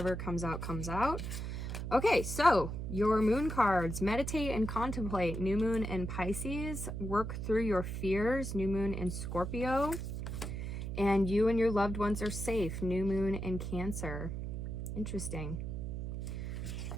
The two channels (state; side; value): noise; right; hum, 5 dB below the sound